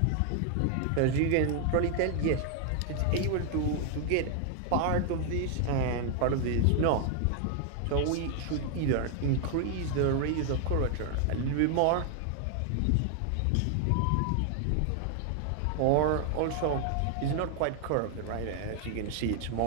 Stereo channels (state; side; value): different; both; correlation 0.00